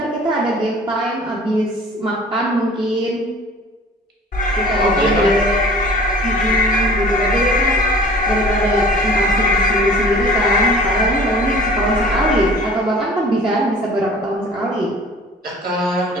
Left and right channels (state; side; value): normal; both; correlation 0.47